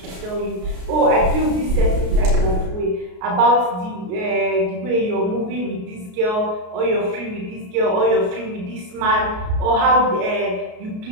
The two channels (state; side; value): late; left; 33 ms